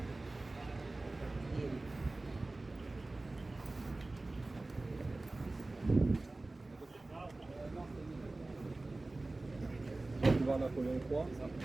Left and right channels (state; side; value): quieter; left; 3.0 dB